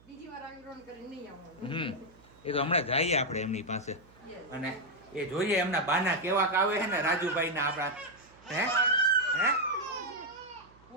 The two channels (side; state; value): right; noise; hum, 27 dB below the sound